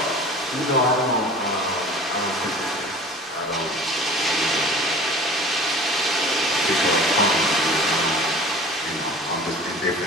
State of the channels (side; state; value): both; normal; correlation 0.42